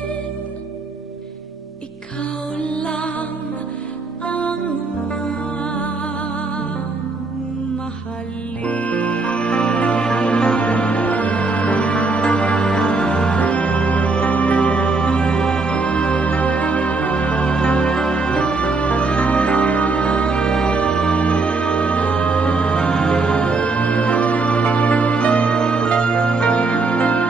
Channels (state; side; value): quieter; left; 3.7 dB